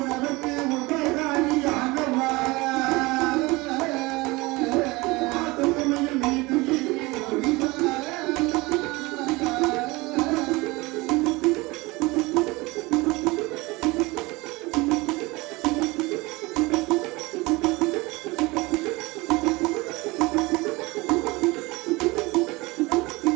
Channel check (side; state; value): left; quieter; 22.8 dB